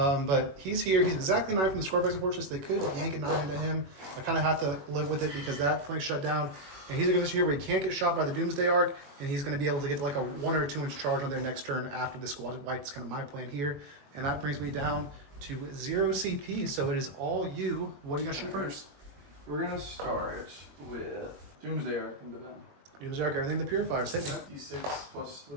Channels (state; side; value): late; left; 21 ms